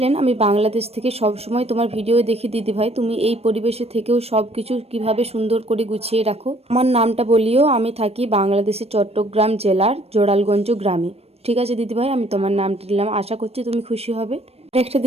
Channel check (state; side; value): late; left; 0.29 ms